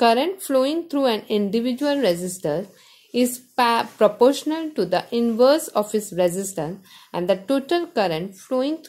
flowing through an individual resistor is proportional to the inverse of its resistance, and the total current flowing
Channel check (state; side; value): identical; both; correlation 1.00